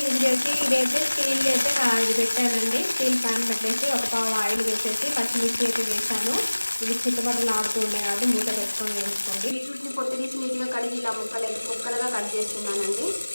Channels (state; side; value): inverted; both; correlation -1.00